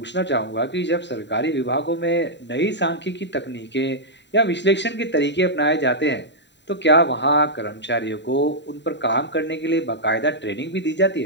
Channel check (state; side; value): late; right; 0.52 ms